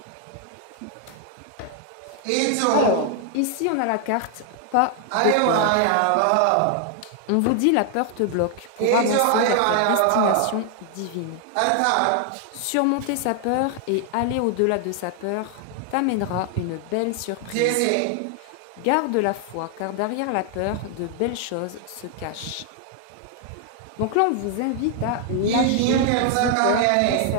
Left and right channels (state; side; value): different; both; correlation 0.00